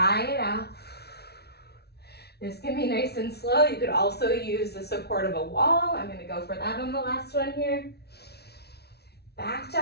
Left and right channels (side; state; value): right; late; 0.48 ms